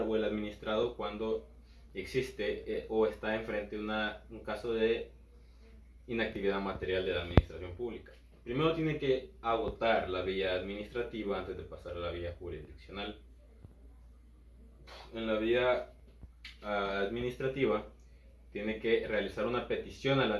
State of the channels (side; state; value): both; identical; correlation 1.00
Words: o el administrado cuando existe o está enfrente de un caso de inactividad material de la administración pública? Primero tiene que agotar la vía administrativa antes de pasar a la vía jurisdiccional. En la vía administrativa tiene que realizar una petición a la